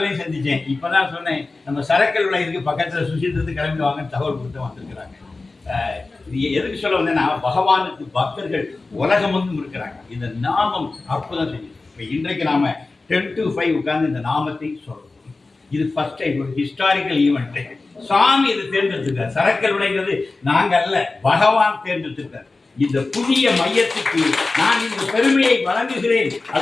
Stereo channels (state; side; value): quieter; right; 3.5 dB